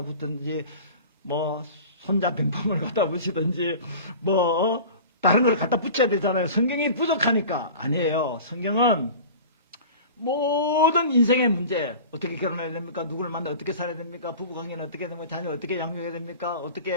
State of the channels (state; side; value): inverted; both; correlation -0.38